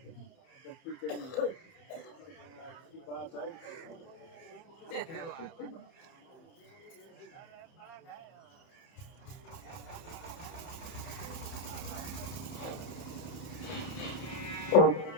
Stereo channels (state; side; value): late; right; 30 ms